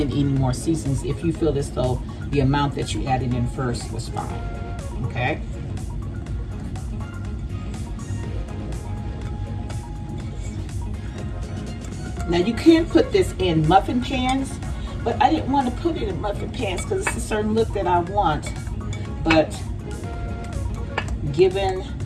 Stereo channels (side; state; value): both; identical; correlation 1.00